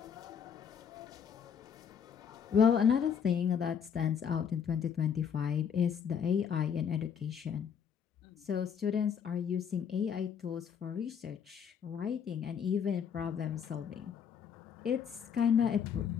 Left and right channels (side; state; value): right; quieter; 7.5 dB